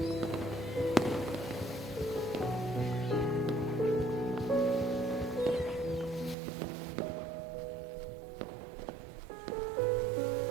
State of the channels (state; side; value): drops out; left; at 6.4 s